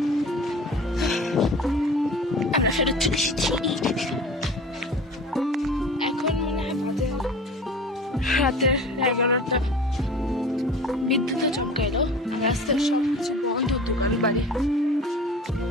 আমরা ফেরত চলে এসেছি। এখন মনে হয় রাতের 11টা। বিদ্যুৎ চমকাইলো, রাস্তার সব কিছু বন্ধ, দোকান বাড়ি।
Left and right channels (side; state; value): both; normal; correlation 0.40